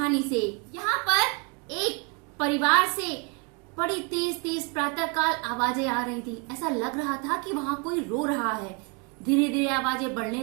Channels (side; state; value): left; quieter; 32.5 dB